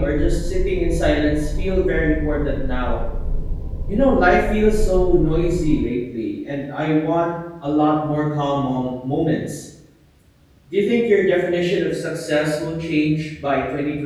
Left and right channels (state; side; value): identical; both; correlation 1.00